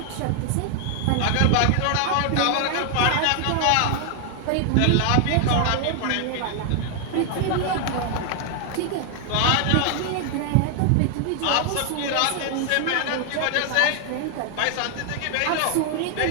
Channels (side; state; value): both; different; correlation 0.00